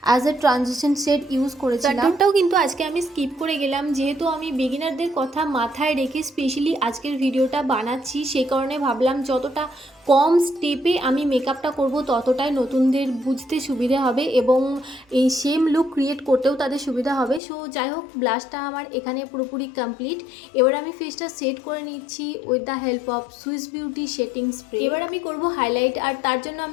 as a transition shade use করেছিলাম। কন্ট্রোলটাও কিন্তু আজকে আমি স্কিপ করে গেলাম, যেহেতু আমি বিগিনারদের কথা মাথায় রেখে স্পেশালি আজকের ভিডিওটা বানাচ্ছি, সেই কারণে ভাবলাম যতটা কম স্টেপে আমি মেকআপটা করব ততটাই নতুনদের বুঝতে সুবিধা হবে এবং এই সেম লুক ক্রিয়েট করতেও তাদের সুবিধা হবে। সো যাই হোক, ব্লাশটা আমার এখানে পুরোপুরি কমপ্লিট। এবার আমি ফেসটা সেট করে নিচ্ছি with the help of Swiss beauty setting spray. এবার আমি করব হাইলাইট, আর তার জন্য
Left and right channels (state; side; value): drops out; right; at 17.4 s